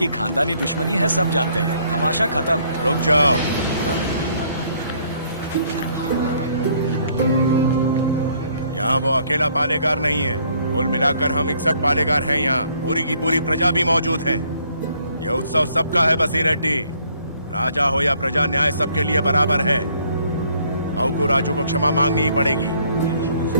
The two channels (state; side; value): inverted; both; correlation -0.64